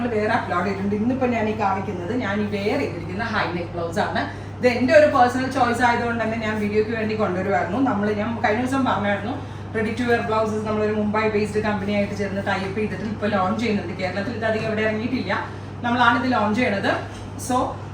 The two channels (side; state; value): both; identical; correlation 1.00